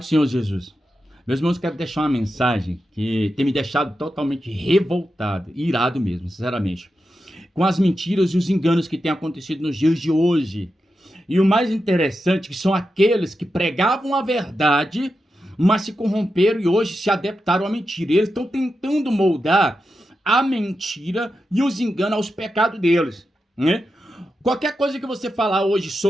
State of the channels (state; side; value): normal; both; correlation 0.89